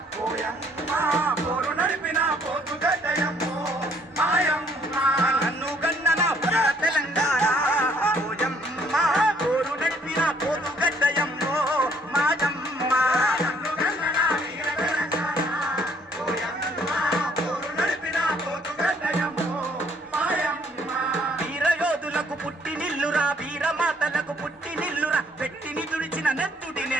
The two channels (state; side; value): normal; both; correlation 0.64